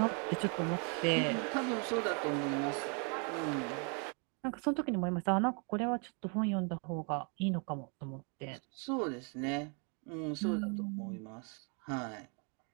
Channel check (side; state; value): left; quieter; 37.4 dB